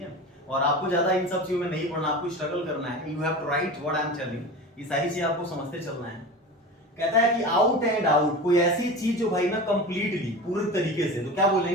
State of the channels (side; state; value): both; normal; correlation 0.30